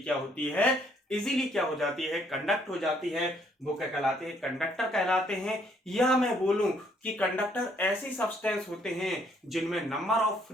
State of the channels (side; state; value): both; normal; correlation 0.67